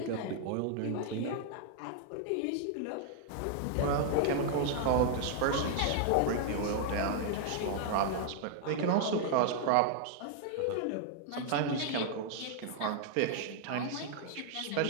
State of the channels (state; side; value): different; both; correlation -0.01